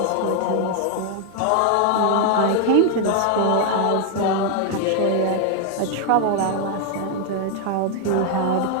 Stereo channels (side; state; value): both; different; correlation 0.00